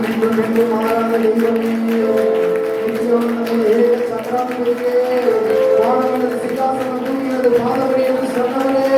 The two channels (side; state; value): both; identical; correlation 1.00